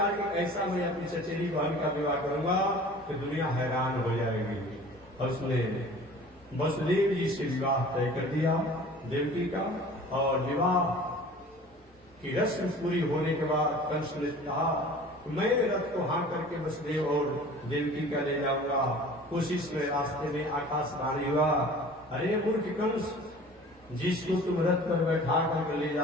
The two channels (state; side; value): normal; both; correlation 0.44